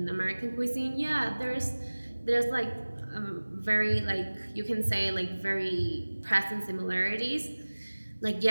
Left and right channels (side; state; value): both; inverted; correlation -1.00